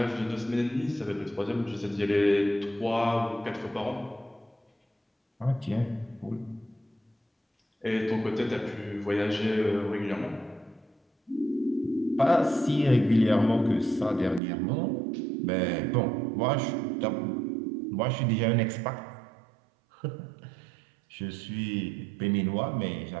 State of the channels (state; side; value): drops out; left; at 14.4 s